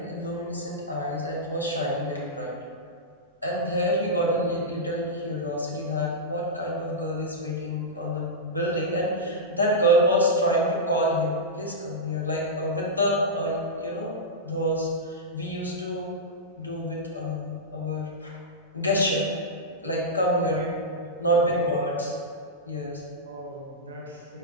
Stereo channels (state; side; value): normal; both; correlation -0.11